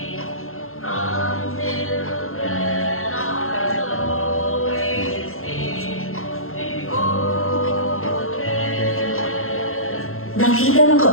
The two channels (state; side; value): late; right; 0.62 ms